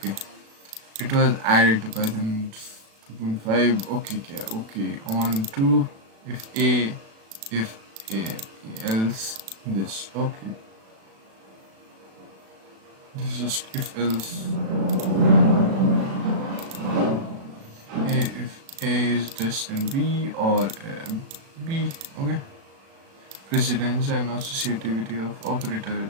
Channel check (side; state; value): left; late; 36 ms